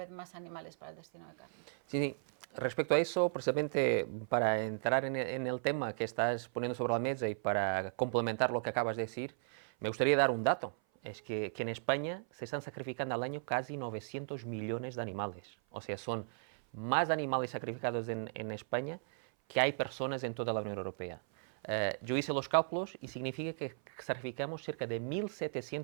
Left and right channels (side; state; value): left; silent; 54 dB below the other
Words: más animales para el destino de carne? Sí. Respecto a eso, precisamente para entrar en el tema que estás poniendo sobre la mesa y para complementar lo que acabas de decir, me gustaría dar un dato. Es que en España se están sacrificando al año casi 900 millones de animales. O sea, son más animales sacrificados en España que hay personas en toda la Unión Europea. Yo hice los cálculos y significa que sacrificamos cerca de